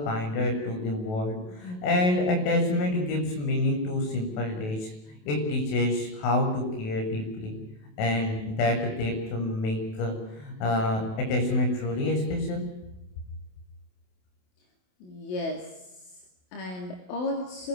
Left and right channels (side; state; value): right; late; 28 ms